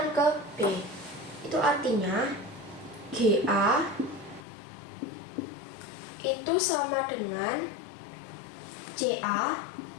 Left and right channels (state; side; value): drops out; right; at 4.5 s